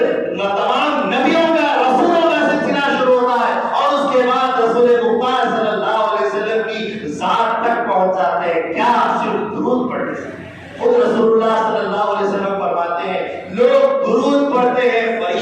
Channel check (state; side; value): identical; both; correlation 1.00